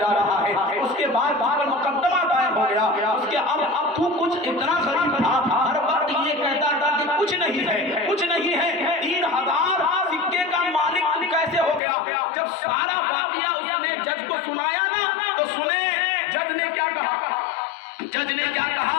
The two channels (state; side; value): drops out; right; at 11.8 s